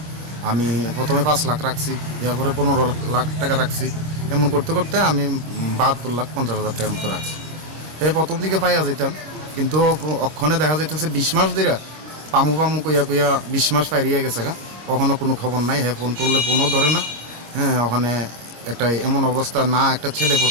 আমি প্রথমে 5 লাখ রাখছি, এরপরে 15 লাখ টাকা রাখছি। এমন করতে করতে আমি 72,50,000 টাকার মতো রাখছি। প্রথম দিকে পাইয়া যেতাম, কিন্তু অক্ষণে দেখা যাইতেছে 20 মাস ধরে পামু কইয়া 20 মাস পাইরিয়ে গেছে গা, কখনো কোনো খবর নাই। ফোন করলে ফোনও ধরে না। ওখানে একটা এমন অবস্থা, না একটা ছেলে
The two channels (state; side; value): late; left; 25 ms